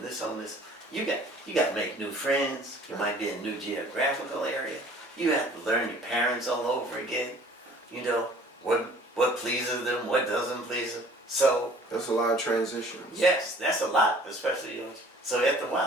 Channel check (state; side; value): normal; both; correlation 0.51